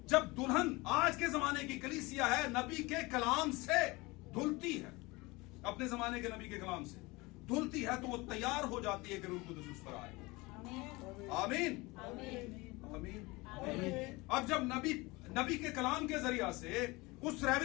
जब दुल्हन आज के जमाने की कलीसिया है, नबी के कलाम से धुलती है, अपने जमाने के नबी के कलाम से धुलती है, तो वो तैयार हो जाती है कि रूह कुद्स उस पर आए। आमीन। आमीन। अब जब नबी के कलाम के जरिया से, उस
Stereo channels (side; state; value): right; quieter; 23.5 dB